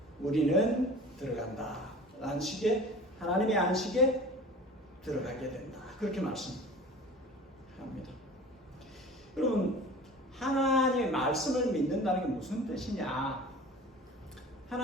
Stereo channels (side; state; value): both; normal; correlation 0.40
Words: 우리는 들어간다. 안식에 하나님의 안식에 들어가게 된다. 그렇게 말씀합니다. 여러분 하나님의 말씀을 믿는다는 게 무슨 뜻이냐?